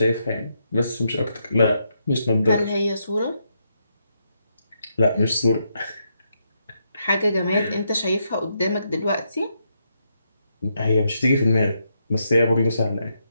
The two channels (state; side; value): inverted; both; correlation -0.80